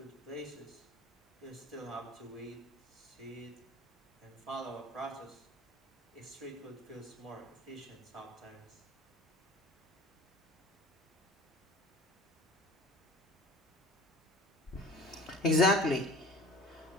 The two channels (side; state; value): both; normal; correlation 0.43